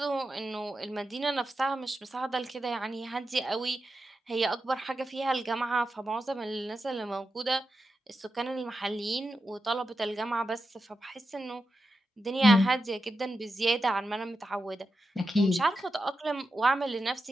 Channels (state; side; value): normal; both; correlation 0.89